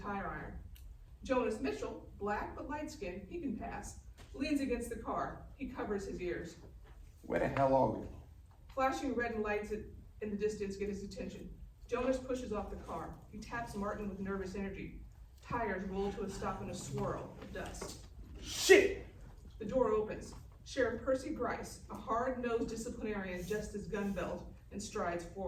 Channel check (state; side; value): identical; both; correlation 1.00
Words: iron. Jonas Mitchell, black but light-skinned, he can pass, leans against the car. He covers his ears. Where the hell are we? Flashing red lights in the distance get his attention. Jonas pushes off the car. He taps Martin with nervous energy. Tires roll to a stop in a swirl of dust. Shit! The door opens. Sheriff Percy Grice, a hard-nosed disciplinarian, adjusts his gun belt and strides